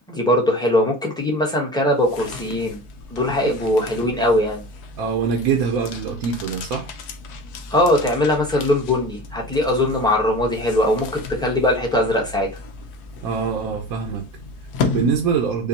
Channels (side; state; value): both; normal; correlation 0.34